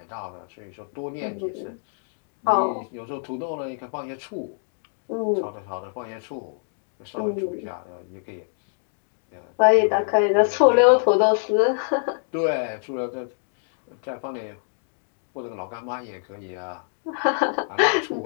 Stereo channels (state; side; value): silent; right; digital silence